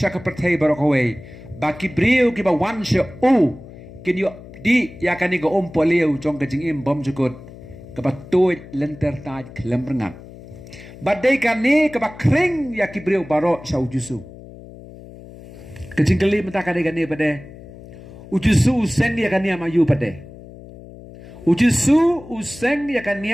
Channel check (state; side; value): noise; left; hum, 17 dB below the sound